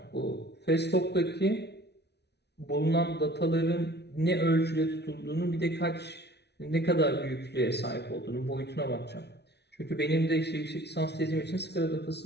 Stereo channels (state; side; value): late; right; 0.49 ms